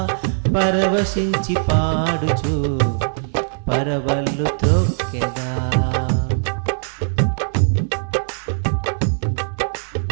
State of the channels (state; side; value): silent; left; digital silence